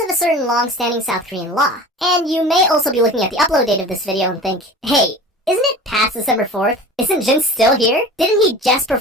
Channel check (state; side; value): normal; both; correlation 0.38